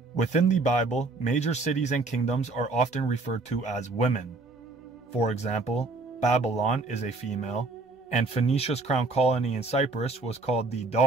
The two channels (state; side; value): quieter; left; 3.5 dB